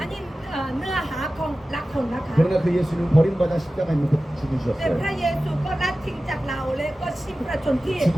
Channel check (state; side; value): normal; both; correlation 0.95